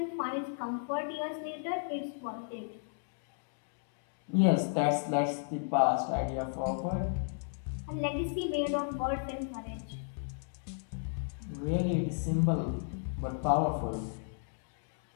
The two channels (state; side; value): silent; right; digital silence